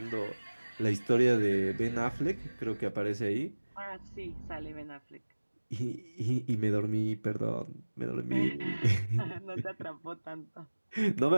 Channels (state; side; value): inverted; both; correlation -1.00